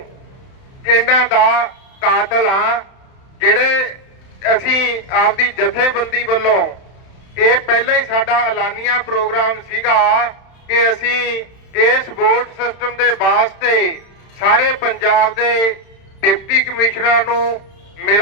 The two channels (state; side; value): late; right; 31 ms